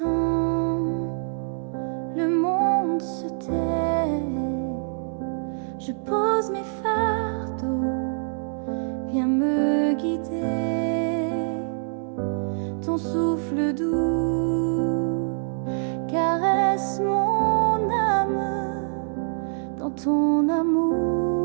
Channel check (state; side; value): silent; left; 60 dB below the other